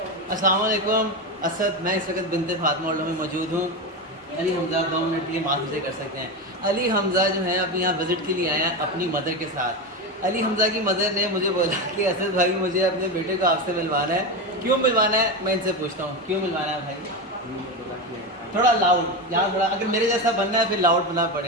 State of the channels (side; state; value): both; normal; correlation 0.17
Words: अस्सलाम वालेकुम असद, मैं इस वक्त बिनते फातिमा में मौजूद हूँ। अली हमज़ा 2 मिनट के लिए माफ़ से कर सकते हैं। अली हमज़ा जो है अभी यहाँ विज़िट के लिए आए हैं अपनी मदर के साथ। अली हमज़ा की मदर ने मुझे बोला कि असद भाई मुझे अपने बेटे को आपसे मिलवाना है। क्यों मिलवाना है मैं इनसे पूछता हूँ, क्यों मिलवाना है भाई? थोड़ा लाउड, यहाँ थोड़ा, अगर मेरे जैसा बनना है फिर लाउड बनना